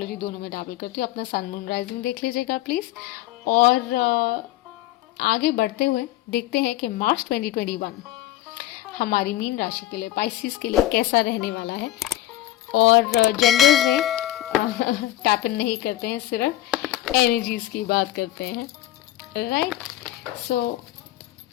दोनों में डैबल करती हूँ. अपना सन मून राइजिंग देख लीजिएगा प्लीज़. और आगे बढ़ते हुए देखते हैं कि मार्च 2021 हमारी मीन राशि के लिए, पाइसिस के लिए कैसा रहने वाला है. और जेंडर्स में टैप इन नहीं करते हैं, सिर्फ एनर्जीज की बात करते हैं. Right. So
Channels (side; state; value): right; quieter; 14.5 dB